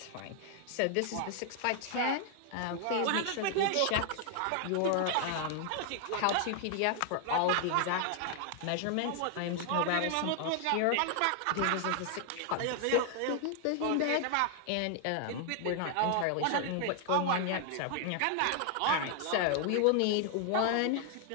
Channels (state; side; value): different; both; correlation 0.00